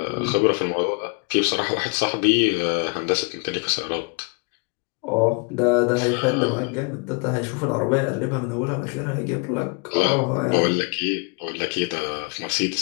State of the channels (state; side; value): quieter; right; 33.2 dB